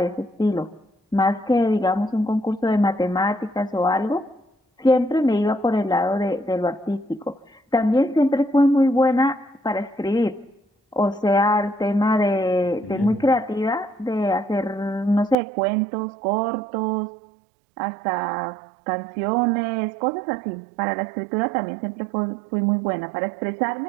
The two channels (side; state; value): left; drops out; at 15.4 s